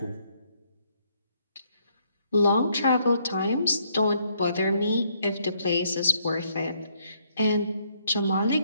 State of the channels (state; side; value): inverted; both; correlation -0.70